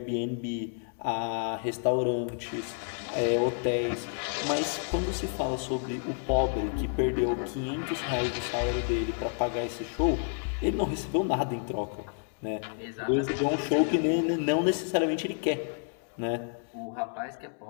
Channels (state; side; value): silent; right; 58 dB below the other